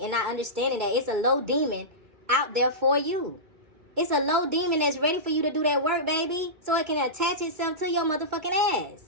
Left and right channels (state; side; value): late; left; 2.2 ms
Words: not understanding that it's a low demon out there for you. It's a low demon that's ready for you to do that work, baby. So it can attach itself to your motherfucking ass.